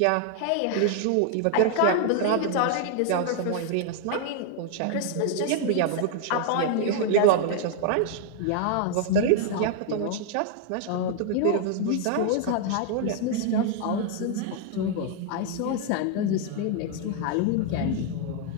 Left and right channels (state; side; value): different; both; correlation 0.00